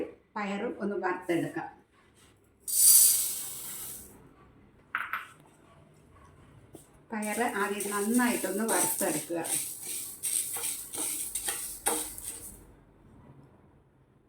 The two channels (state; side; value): identical; both; correlation 1.00